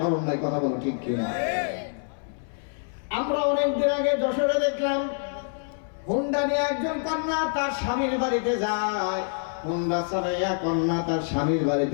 নাই। কথা বলো ঠিক কিনা? আমরা অনেকদিন আগে যশোরে দেখলাম, হুন্ডা নিয়ে একজন কন্যা তার স্বামীর বাড়িতে যায়, হুন্ডা চালাইয়া কন্যা তার স্বামীর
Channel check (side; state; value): right; silent; 60 dB below the other